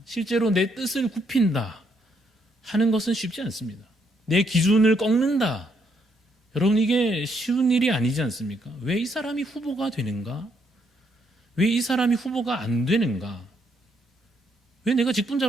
실제로 내 뜻을 굽힌다 하는 것은 쉽지 않습니다. 내 기준을 꺾는다. 여러분 이게 쉬운 일이 아니지 않습니까? 왜 이 사람이 후보가 되는가? 왜 이 사람이 후보가 안 되는가? 왜 내가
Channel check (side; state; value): both; normal; correlation 0.74